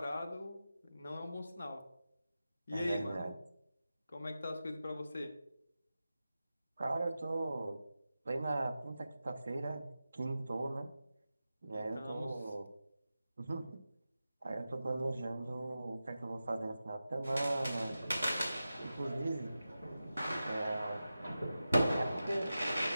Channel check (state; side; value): inverted; both; correlation -0.93